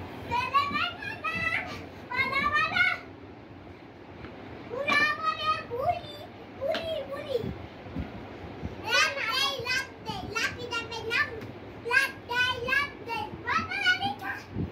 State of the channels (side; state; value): both; identical; correlation 1.00